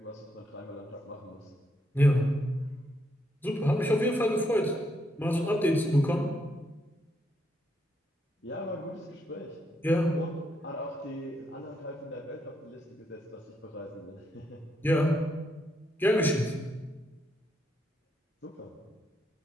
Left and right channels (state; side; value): normal; both; correlation 0.77